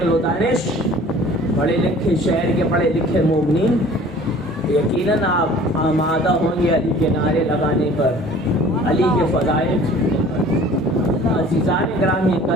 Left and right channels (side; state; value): both; normal; correlation 0.48